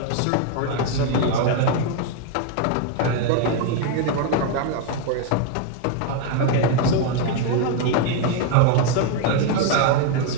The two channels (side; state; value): both; different; correlation 0.01